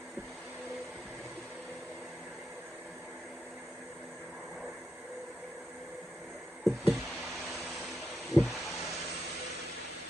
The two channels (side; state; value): both; normal; correlation 0.84